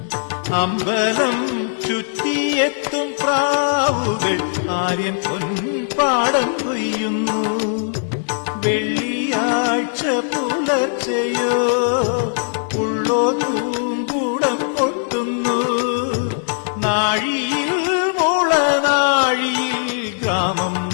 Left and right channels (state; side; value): silent; right; digital silence